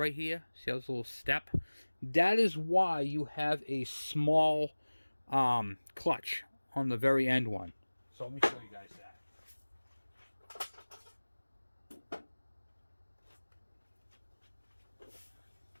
here. See how there's a little step? That is why you have a small clutch on the very end one. So let me show you guys that.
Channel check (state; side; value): inverted; both; correlation -1.00